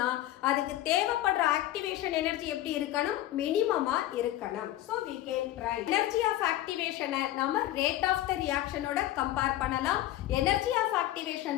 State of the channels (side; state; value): right; quieter; 14.4 dB